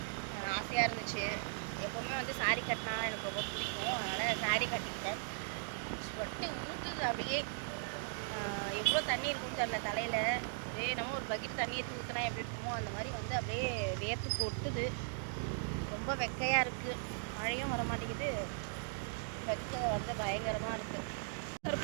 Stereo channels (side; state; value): left; silent; digital silence